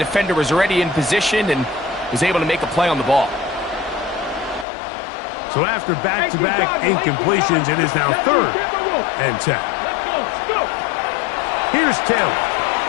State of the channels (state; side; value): drops out; right; at 4.7 s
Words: was already in position and was able to make a play on the ball. So after back-to-back incompletions, it is now third and 10. Here's Taylor.